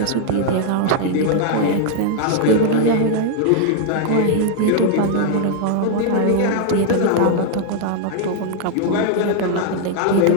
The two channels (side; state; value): both; different; correlation 0.00